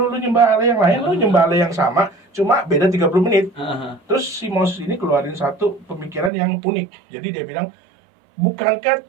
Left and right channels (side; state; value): left; drops out; at 6.3 s